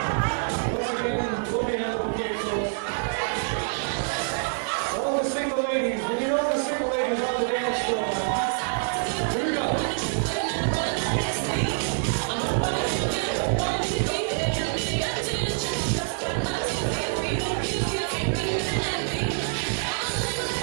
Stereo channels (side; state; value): left; silent; digital silence